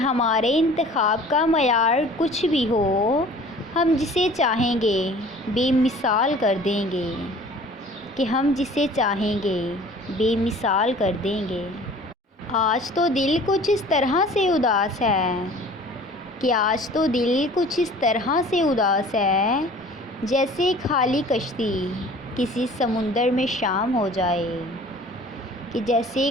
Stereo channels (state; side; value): normal; both; correlation 0.47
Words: انتخاب کا معیار کچھ بھی ہو، ہم جسے چاہیں گے بے مثال کر دیں گے، کہ ہم جسے چاہیں گے بے مثال کر دیں گے۔ آج تو دل کچھ اس طرح سے اداس ہے، کہ آج تو دل کچھ اس طرح سے اداس ہے، جیسے خالی کشتی کسی سمندر میں شام ہو جائے، کہ جیسے